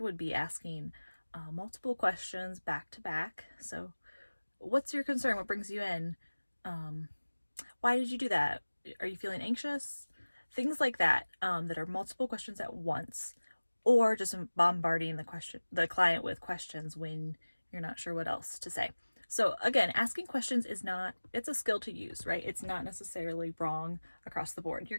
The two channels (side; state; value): both; inverted; correlation -1.00